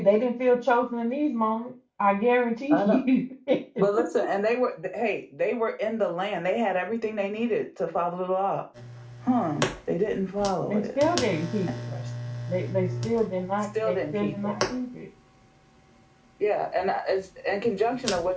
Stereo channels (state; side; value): identical; both; correlation 1.00